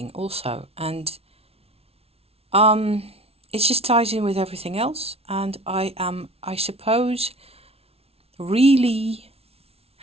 also, and um, it just ties in with everything else. And I am, I suppose, really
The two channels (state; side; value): late; left; 0.30 ms